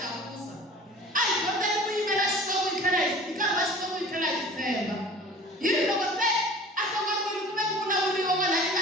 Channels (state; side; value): normal; both; correlation 0.43